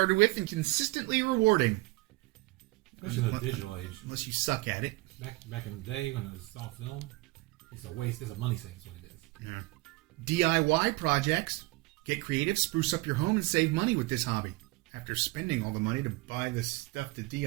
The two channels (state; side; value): quieter; left; 23.0 dB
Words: with and consistently rewarding. Especially in the digital age. Unless you suck at it. Back in the day when it was all film, it's a waste. It's a money sink is what it is. Yeah. DIY projects. Get creative, spruce up your home, and save money with this hobby. After spending all the money to buy the stuff to